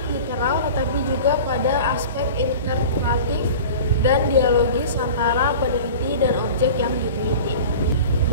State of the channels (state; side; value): inverted; both; correlation -0.37